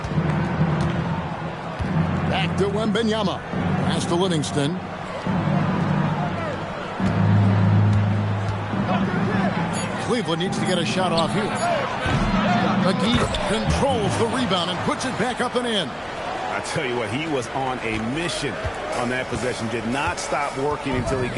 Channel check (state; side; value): identical; both; correlation 1.00